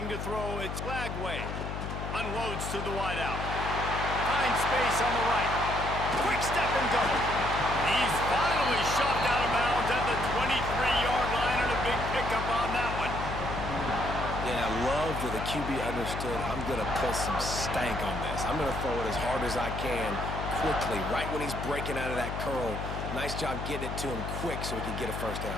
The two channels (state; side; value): noise; left; hum, 5 dB below the sound